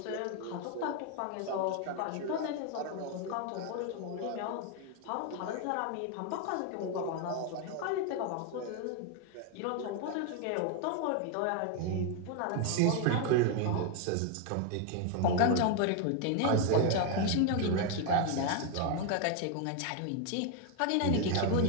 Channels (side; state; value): both; different; correlation 0.01